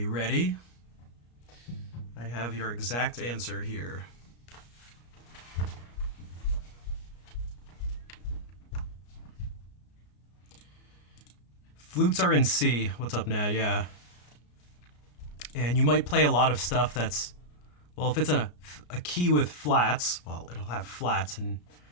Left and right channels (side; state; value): right; late; 34 ms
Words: ready? I have your exact answer here. Flutes are in C. What's up now? Yeah. And you might play a lot of stuff that's, well, if it's a key with flats, well, it'll have flats, and